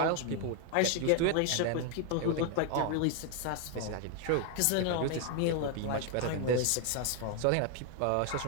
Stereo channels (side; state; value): both; different; correlation 0.00